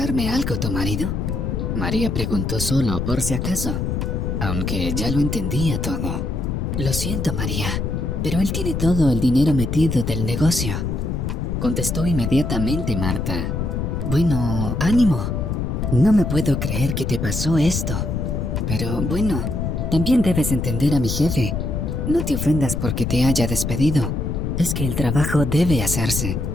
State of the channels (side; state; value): left; noise; rumble, 1 dB below the sound